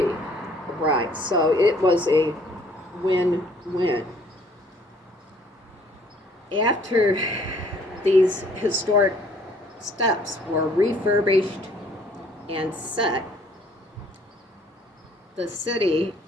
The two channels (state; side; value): normal; both; correlation 0.59